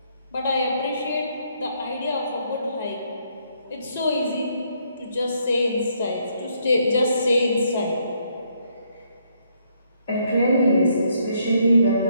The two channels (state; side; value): inverted; both; correlation -0.71